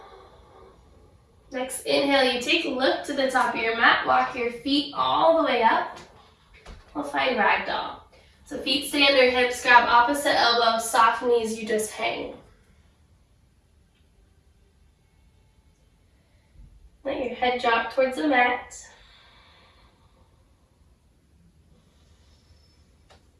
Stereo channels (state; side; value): identical; both; correlation 1.00